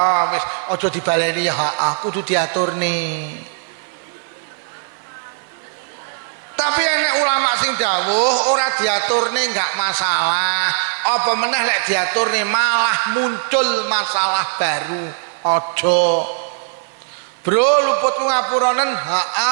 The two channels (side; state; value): left; silent; 57 dB below the other